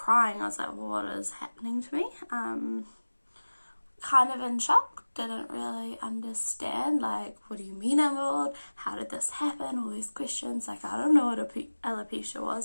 I was like, what is happening to me? Kind of in shock, didn't really understand, what do you mean I'm bald? How did this happen? All these questions, I don't know what alopecia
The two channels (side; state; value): both; inverted; correlation -1.00